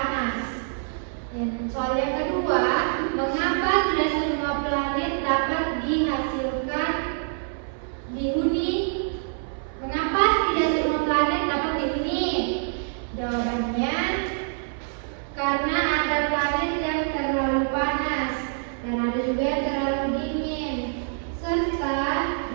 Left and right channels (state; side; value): silent; left; 61 dB below the other